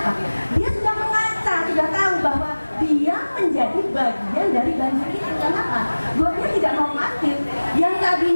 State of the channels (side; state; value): both; inverted; correlation -1.00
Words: Dia sudah mengaca, sudah tahu bahwa dia menjadi bagian dari banjir itu. Kenapa? Gotnya tidak normatif. Yang